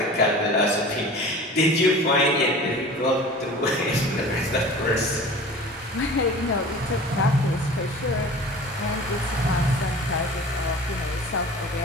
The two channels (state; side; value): normal; both; correlation 0.40